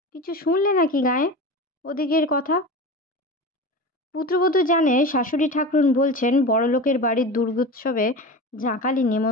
কিছু শুনলে নাকি গায়ে ওদিকের কথা? পুত্রবধূ জানে শাশুড়ি ঠাকরুন বলছেন বড়লোকের বাড়ির দুর্গোৎসবে জাঁকালি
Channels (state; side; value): normal; both; correlation 0.29